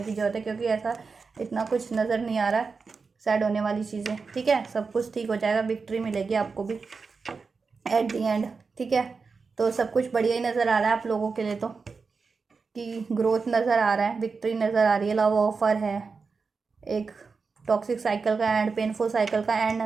की ज़रूरत है, क्योंकि ऐसा इतना कुछ नज़र नहीं आ रहा सैड होने वाली चीज़ें, ठीक है। सब कुछ ठीक हो जाएगा, विक्ट्री मिलेगी आपको भी एट दी एंड, ठीक है। तो सब कुछ बढ़िया ही नज़र आ रहा है आप लोगों के लिए, तो कि ग्रोथ नज़र आ रहा है, विक्ट्री नज़र आ रही है, लव ऑफर है, एक टॉक्सिक साइकिल का एंड, पेनफुल साइकिल का एंड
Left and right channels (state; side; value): quieter; left; 4.8 dB